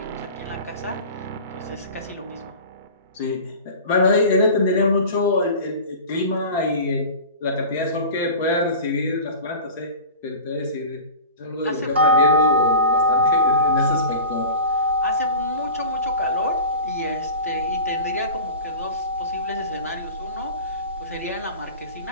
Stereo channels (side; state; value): both; inverted; correlation -0.36